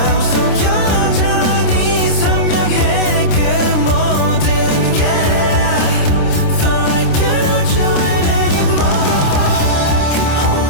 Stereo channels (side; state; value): right; late; 27 ms